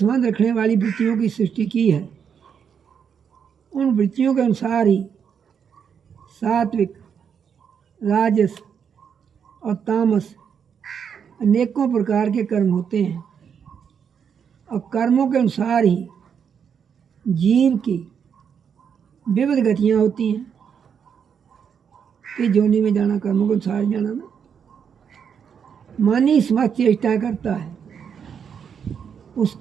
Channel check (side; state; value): left; quieter; 7.3 dB